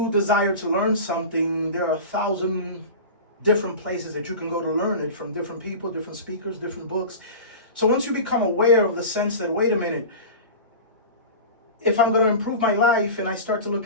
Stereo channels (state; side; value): inverted; both; correlation -0.32